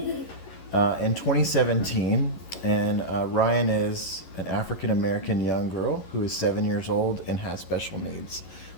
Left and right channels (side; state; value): right; late; 11 ms